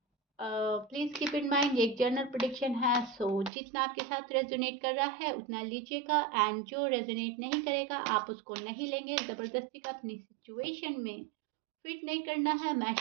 प्लीज़ कीप इन माइंड ये एक जनरल प्रिडिक्शन है, सो जितना आपके साथ रेजोनेट कर रहा है उतना लीजिएगा एंड जो रेजोनेट नहीं करेगा आप उसको नहीं लेंगे। ज़बरदस्ती का अपनी सिचुएशन में फिट नहीं करना है,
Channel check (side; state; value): left; drops out; at 3.5 s